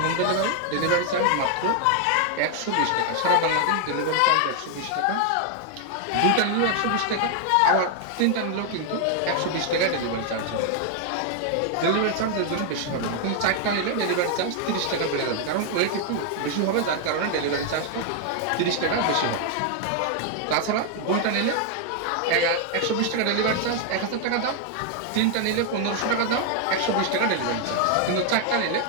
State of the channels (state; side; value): different; both; correlation 0.00